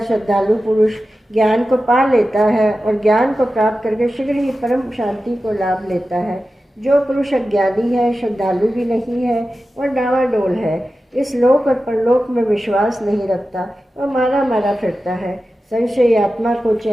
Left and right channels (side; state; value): both; normal; correlation 0.93